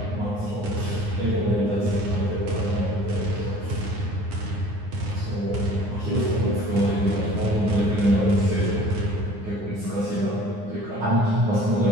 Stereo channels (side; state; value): left; late; 9.6 ms